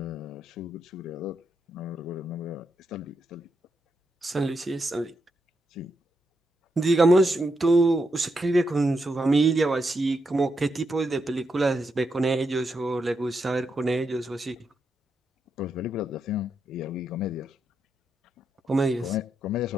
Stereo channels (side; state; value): both; normal; correlation 0.83